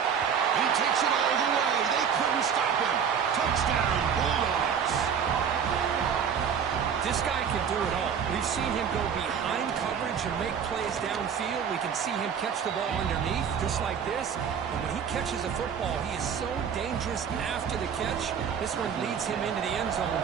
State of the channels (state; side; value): quieter; left; 7.4 dB